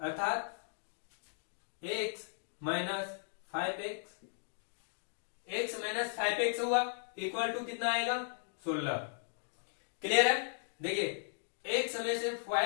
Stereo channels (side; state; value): right; silent; digital silence